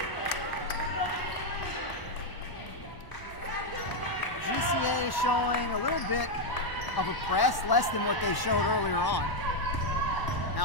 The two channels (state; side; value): late; right; 1.1 ms